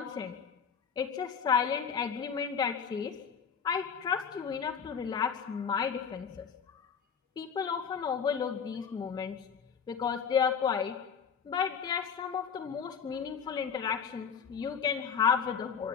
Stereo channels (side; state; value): right; quieter; 6.8 dB